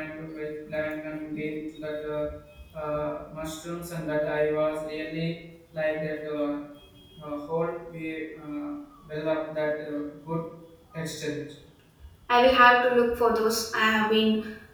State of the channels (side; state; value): both; identical; correlation 1.00